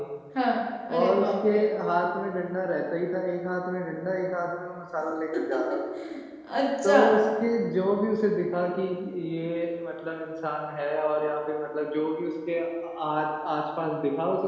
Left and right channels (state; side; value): identical; both; correlation 1.00